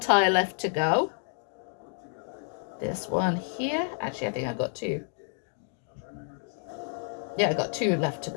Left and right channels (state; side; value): silent; right; 58 dB below the other